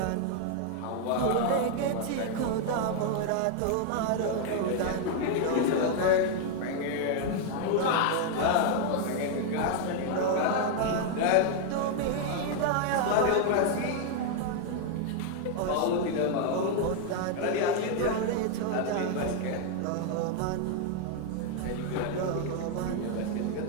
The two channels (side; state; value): both; different; correlation 0.00